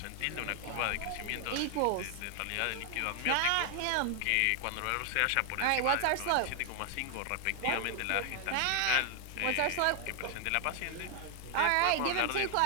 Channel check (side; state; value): both; different; correlation 0.00